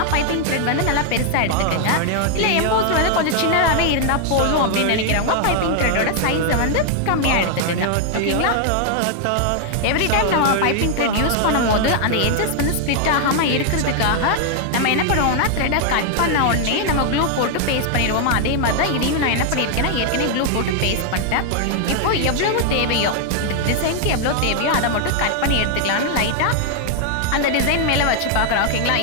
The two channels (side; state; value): both; different; correlation 0.00